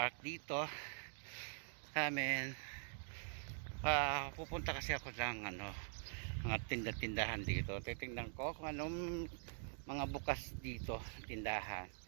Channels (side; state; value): left; silent; digital silence